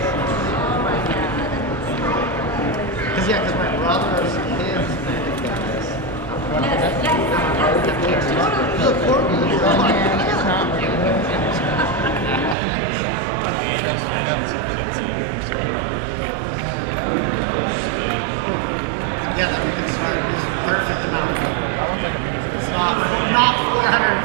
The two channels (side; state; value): left; drops out; at 12.6 s